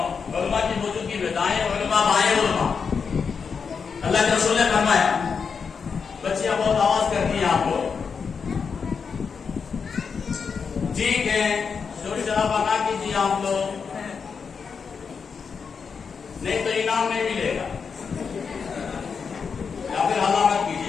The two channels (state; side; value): quieter; right; 5.9 dB